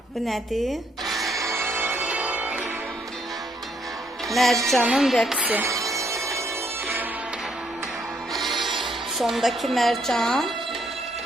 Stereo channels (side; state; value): both; normal; correlation 0.72